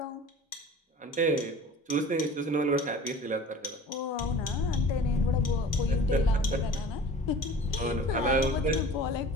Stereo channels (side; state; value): both; normal; correlation 0.42